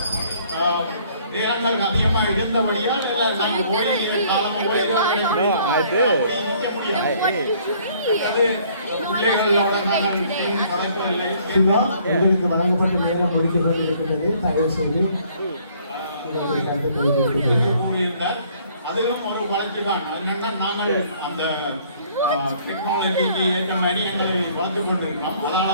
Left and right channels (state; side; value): inverted; both; correlation -0.60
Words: நேரங்கள் அதிகமா இருந்தபடியால் நாங்கள் ஓடி காலம் உங்களுக்கு வழங்கப்பட்ட நேரம் முடிக்கப்பட்டிருக்கிறது. தயவு செய்து அதிலும் ஒரு வளர்ச்சி தான். அதனால நாங்கள் அந்த டெக்னாலஜிக்கு ஏற்ற மாதிரி எங்களை வளர்த்து கொண்டிருக்கிறோம்.